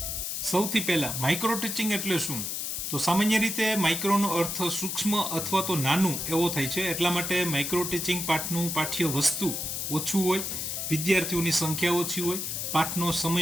સૌથી પહેલા માઇક્રો ટીચિંગ એટલે શું? તો સામાન્ય રીતે માઇક્રોનો અર્થ સૂક્ષ્મ અથવા તો નાનું એવો થાય છે. એટલા માટે માઇક્રો ટીચિંગ પાઠનું પાઠ્ય વસ્તુ ઓછું હોય, વિદ્યાર્થીઓની સંખ્યા ઓછી હોય, પાઠનો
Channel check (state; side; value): noise; left; hiss, 3 dB below the sound